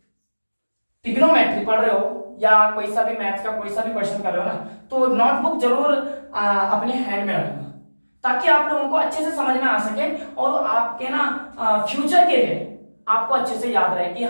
ट्रिग्नोमेट्री पढ़ रहे हो या कोई सा भी मैथ्स का कोई सा भी क्वेश्चन कर रहे हो ना, तो नोटबुक जरूर अपने हैंड में रखना, ताकि आप लोगों को अच्छे से समझ में आ सके और आपके ना फ्यूचर के लिए आपको अच्छे से याद रहे कि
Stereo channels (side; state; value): both; inverted; correlation -1.00